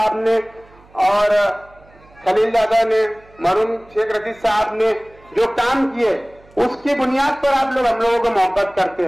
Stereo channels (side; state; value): right; noise; hum, 27 dB below the sound